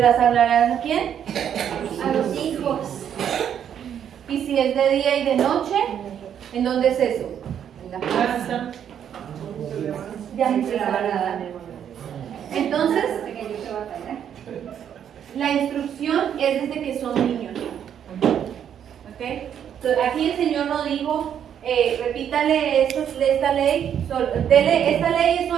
las hablarán a quién? A los hijos. ¿Y si es de día y de noche? ¿En dónde es eso? En la casa. Ya se la van a dar. Entonces, la instrucción es desde que son niños. ¿Okay? Entonces, aquí el Señor nos dijo, repítale esta ley, esta ley es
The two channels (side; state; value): left; quieter; 9.1 dB